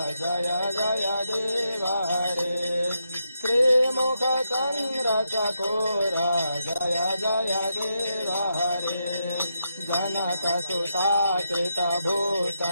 जय जय देव हरे श्रीमुख चंद्र चकोर जय जय देव हरे जनक सुताकृत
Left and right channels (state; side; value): inverted; both; correlation -0.83